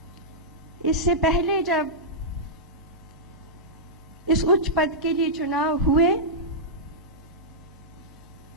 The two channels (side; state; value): both; normal; correlation -0.11